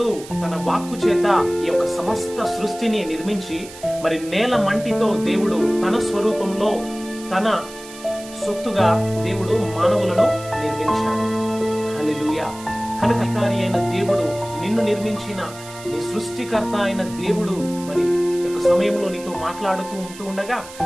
తన వాక్కు చేత ఈ యొక్క సమస్త సృష్టిని నిర్మించి మరి నేల మంటితో దేవుడు తన స్వరూపంలో తన సొత్తుగా దేవుడు మానవులను నిర్మించాడు. హల్లెలూయా. కనుక అధికారి అయిన దేవుడు, నిన్ను నిర్మించిన నీ సృష్టికర్త అయిన దేవుడు మరి యొక్క సమయంలో నీతో మాట్లాడుతూ ఉంటూ ఉండగా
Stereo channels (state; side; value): noise; right; hiss, 17 dB below the sound